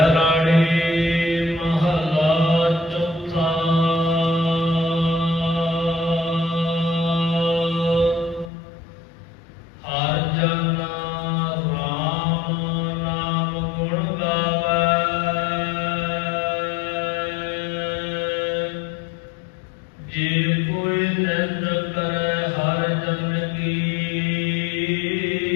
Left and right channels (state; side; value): drops out; right; at 8.5 s